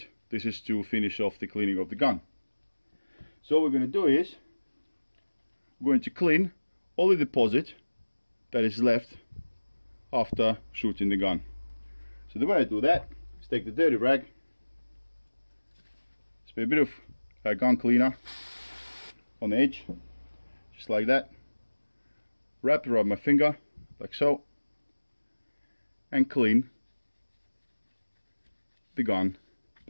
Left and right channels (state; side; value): inverted; both; correlation -1.00